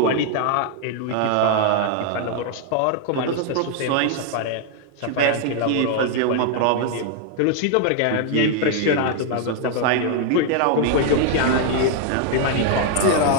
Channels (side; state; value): both; different; correlation 0.00